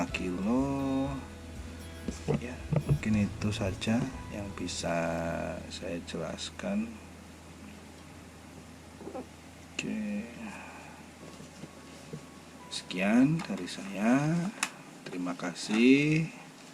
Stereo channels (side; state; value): both; identical; correlation 1.00